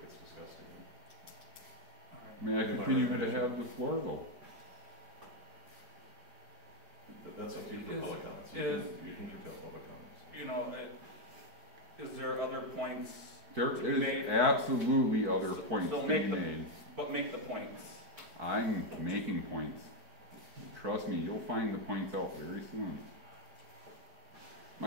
it gets discussed again. May I continue to have the floor, though? That's up to you for public comments. You can curtail public comments. You know, is there other points? There is absolutely other points so being made. But make the points. I'm making points. Trust me, you'll find the points out very soon.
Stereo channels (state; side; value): late; left; 4.5 ms